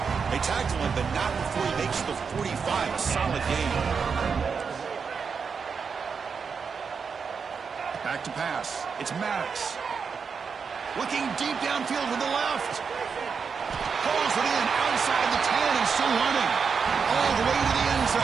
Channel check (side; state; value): left; quieter; 5.8 dB